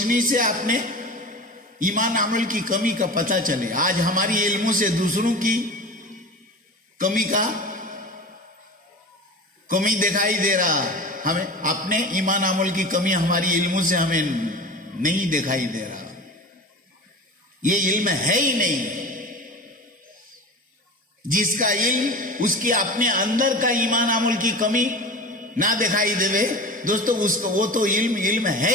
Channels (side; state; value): both; normal; correlation 0.33